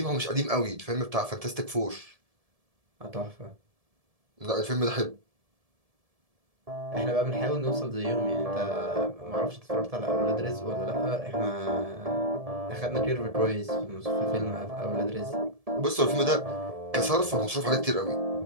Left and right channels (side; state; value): left; late; 1.7 ms